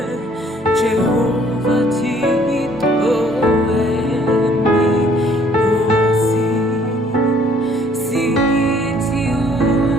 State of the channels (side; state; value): both; normal; correlation 0.61